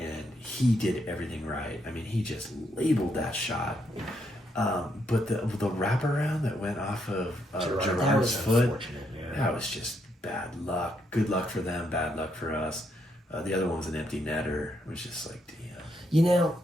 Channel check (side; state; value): both; normal; correlation 0.76